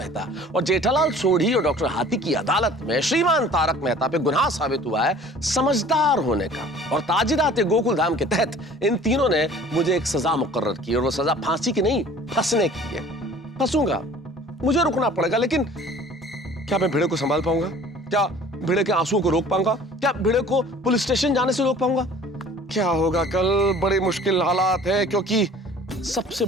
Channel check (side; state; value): both; normal; correlation 0.49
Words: और जेठालाल, सोढ़ी और डॉक्टर हाथी की अदालत में श्रीमान तारक मेहता पे गुनाह साबित हुआ है समझदार होने का। और ताजिराते गोकुलधाम के तहत इन तीनों ने मुझे एक सजा मुकर्रर की, और वो सजा फांसी की नहीं, फंसने की है। फंसूंगा, मुझे रुकना पड़ेगा, लेकिन क्या मैं भिड़े को संभाल पाऊंगा? क्या भिड़े के आंसुओं को रोक पाऊंगा? क्या भिड़े को पुलिस स्टेशन जाने से रोक पाऊंगा? क्या होगा कल? बड़ी मुश्किल हालात है, क्योंकि सबसे